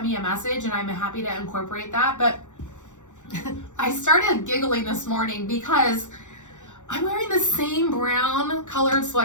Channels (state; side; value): late; right; 0.85 ms